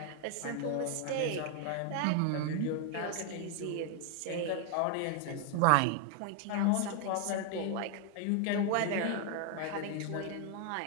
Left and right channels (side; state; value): both; different; correlation 0.00